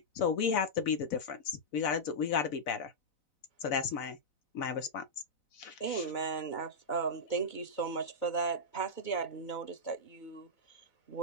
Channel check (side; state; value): right; late; 4.0 ms